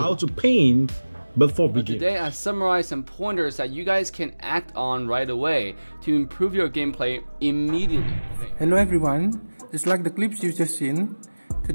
to paint before beginning. Today I summarized some pointers that you guys can act on right away to improve your gameplay immediately. Hello everyone, just like the clips you've just seen,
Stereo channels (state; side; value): inverted; both; correlation -1.00